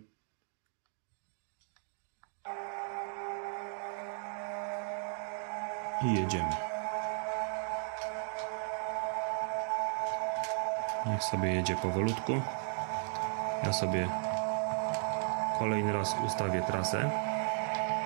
I jedziemy. Niech sobie jedzie powolutku. Ja sobie kolejny raz ustawię trasę.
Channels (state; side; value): silent; left; 54 dB below the other